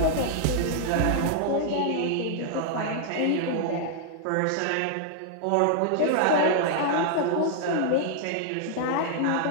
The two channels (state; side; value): different; both; correlation 0.00